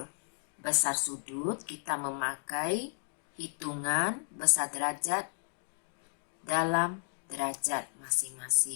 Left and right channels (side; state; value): right; silent; digital silence